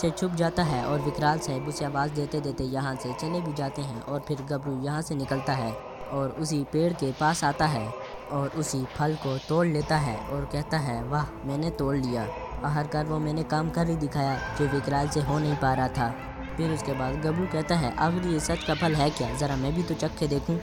छुप जाता है और विकराल साहब उसे आवाज़ देते देते यहाँ से चले भी जाते हैं। और फिर गबरू यहाँ से निकलता है और उसी पेड़ के पास आता है और उसी फल को तोड़ लेता है और कहता है, वाह मैंने तोड़ लिया, आखिरकार वो मैंने काम कर ही दिखाया जो विकराल से हो नहीं पा रहा था। फिर उसके बाद गबरू कहता है, आखिर ये सच का फल है क्या, ज़रा मैं भी तो चख के देखूं।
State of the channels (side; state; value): both; identical; correlation 1.00